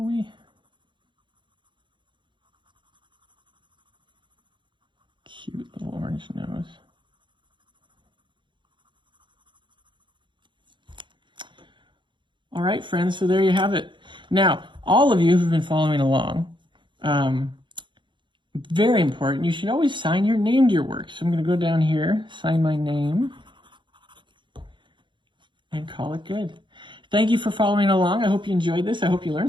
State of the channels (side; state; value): left; late; 0.23 ms